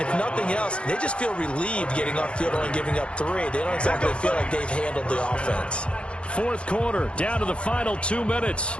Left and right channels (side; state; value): right; late; 0.058 ms